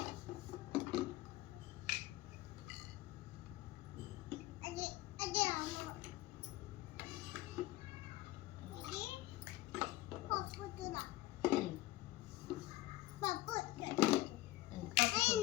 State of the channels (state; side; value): quieter; right; 17.5 dB